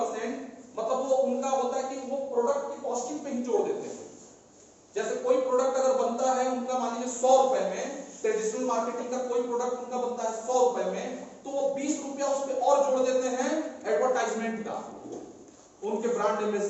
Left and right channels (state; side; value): identical; both; correlation 1.00